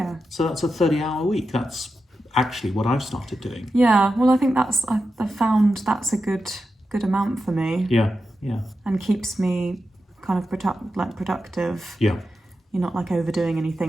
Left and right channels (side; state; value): both; normal; correlation 0.89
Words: So that's a 30-hour week. That's actually what I've started doing. Yeah. Well, I think I found that's a good amount for me. Yeah. And keeps me kind of productive. Yeah. You're not like overdoing